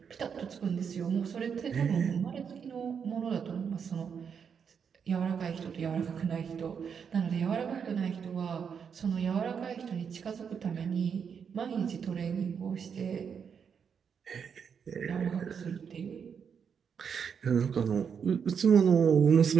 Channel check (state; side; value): quieter; left; 6.9 dB